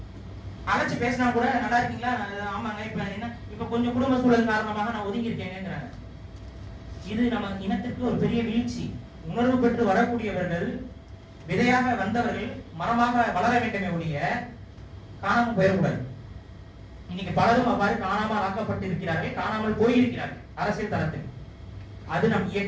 அழைச்சு பேசினா கூட நல்லா இருக்கீங்களா, ஆமாங்க, இப்ப என்ன இப்ப கொஞ்சம் குடும்ப சூழல் காரணமாக நான் ஒதுங்கி இருக்கேங்கிறாங்க. இது நம்ம இனத்திற்கு ஒரு பெரிய வீழ்ச்சி. உணர்வு பெற்று வரக்கூடியவர்கள், விதையாக வந்தவர்கள் மரமாக வளர வேண்டுமே ஒழிய காணாமல் போயிடக்கூடாது. இன்னைக்கு பலரும் அவ்வாறு காணாமல் ஆக்கப்பட்டு இருக்கிறார்கள், காணாமல் போயிருக்கிறார்கள் அரசியல் தளத்தில். அது நம்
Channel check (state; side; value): identical; both; correlation 1.00